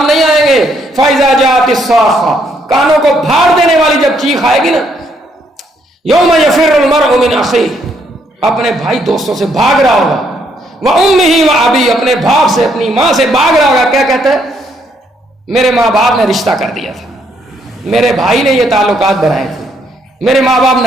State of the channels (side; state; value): both; normal; correlation 0.71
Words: نہیں آئیں گے. فَإِذَا جَاءَتِ الصَّاخَّةُ, کانوں کو پھاڑ دینے والی جب چیخ آئے گی نا, یوم یفر المرء من اخیہ, اپنے بھائی دوستوں سے بھاگ رہا ہوگا, وَأُمِّهِ وَأَبِيهِ, اپنے باپ سے اپنی ماں سے بھاگ رہا ہوگا. کیا کہتا ہے؟ میرے ماں باپ نے رشتہ کر دیا تھا, میرے بھائی نے یہ تعلقات بنائے تھے, میرے ماں باپ